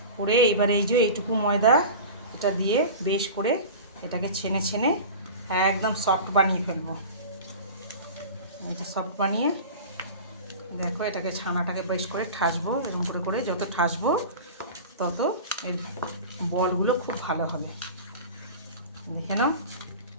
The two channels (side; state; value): both; inverted; correlation -0.33